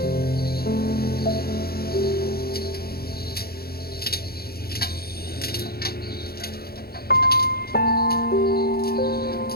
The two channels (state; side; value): late; right; 0.45 ms